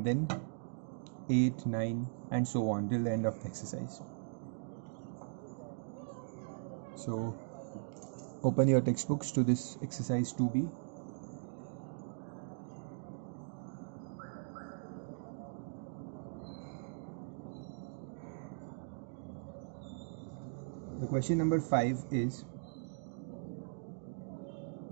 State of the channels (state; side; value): silent; left; digital silence